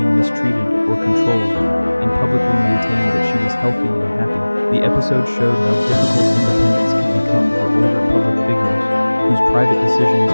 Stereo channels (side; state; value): both; inverted; correlation -1.00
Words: mistreated or controlled, and publicly maintained that she was healthy and happy. The episode showed how difficult independence can become for older public figures, whose private decisions